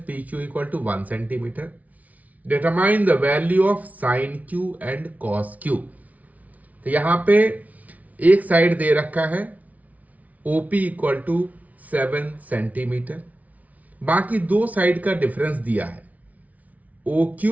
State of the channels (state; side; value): late; left; 0.072 ms